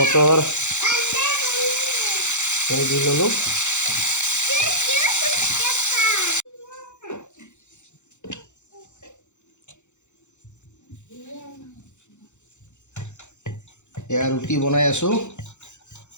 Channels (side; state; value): right; late; 0.84 ms